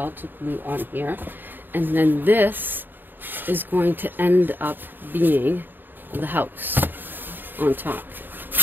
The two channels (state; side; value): late; left; 0.093 ms